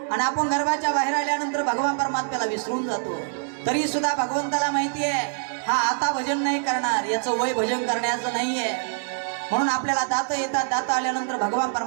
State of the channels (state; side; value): silent; left; digital silence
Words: आणि आपण गर्भाच्या बाहेर आल्यानंतर भगवान परमात्म्याला विसरून जातो. तरी सुद्धा भगवंताला माहिती आहे हा आता भजन नाही करणार, याचं वय भजन करण्याचं नाहीये. म्हणून आपल्याला दात येतात. दात आल्यानंतर भगवान